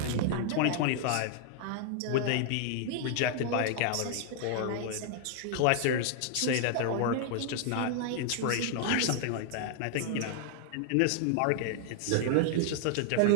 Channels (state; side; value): different; both; correlation 0.00